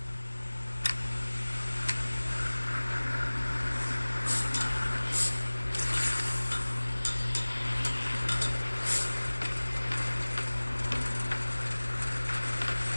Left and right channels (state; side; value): inverted; both; correlation -1.00